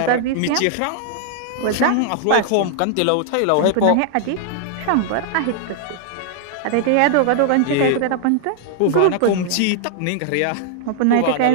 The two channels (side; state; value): both; different; correlation 0.00